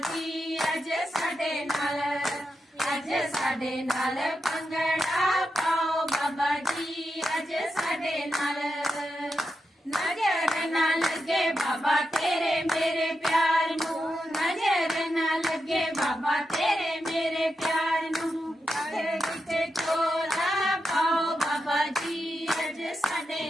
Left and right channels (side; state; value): both; normal; correlation 0.87